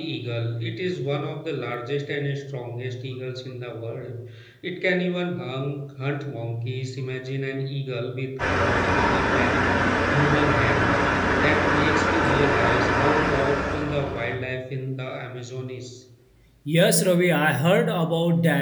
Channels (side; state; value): both; identical; correlation 1.00